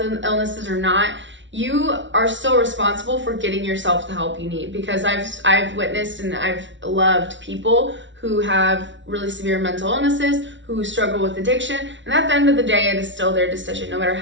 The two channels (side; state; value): left; late; 0.55 ms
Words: illnesses or not, you are still responsible for getting yourself the help you need, because I've witnessed and I've loved people who have really severe mental illnesses, who struggle with addiction, and at the end of the day, it is still their decision. No matter